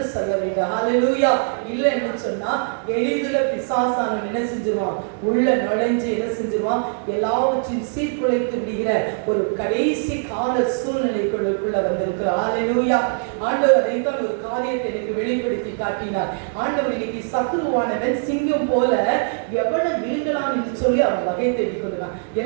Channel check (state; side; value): silent; left; 64 dB below the other